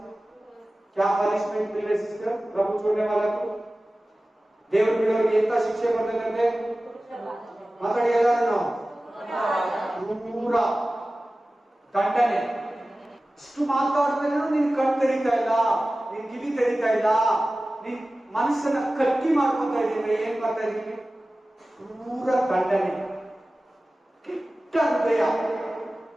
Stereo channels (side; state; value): both; normal; correlation 0.96